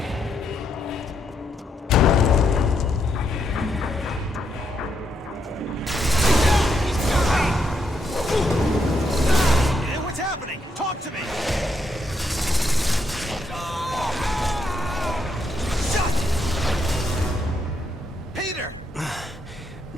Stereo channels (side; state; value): both; normal; correlation 0.78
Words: What's happening? Talk to me!